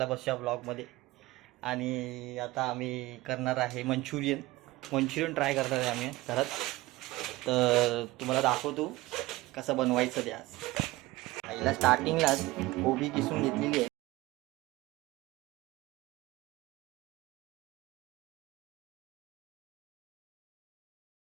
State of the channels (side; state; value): left; quieter; 19.2 dB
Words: बसूया ब्लॉगमध्ये. आणि आता आम्ही करणार आहे मंचुरियन ट्राय करणार आहे आम्ही घरात. तर तुम्हाला दाखवतो कसं बनवायचं ते. आज पहिला स्टार्टिंगलाच कोबी किसून घेतलेली आहे.